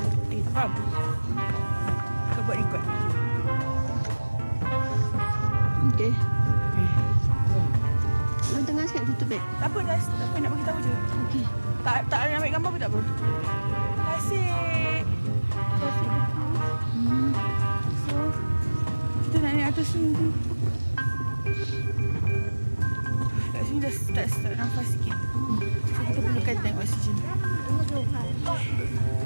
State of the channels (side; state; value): both; inverted; correlation -1.00